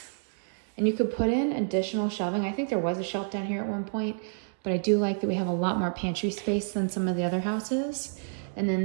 and you could put in additional shelving. I think there was a shelf down here at one point, but I do like that we have a lot more pantry space than some of the other houses. And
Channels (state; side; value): silent; left; digital silence